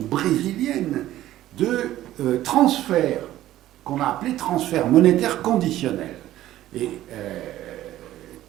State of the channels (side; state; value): left; quieter; 14.0 dB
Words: de transfert, qu'on a appelé transfert monétaire conditionnel, et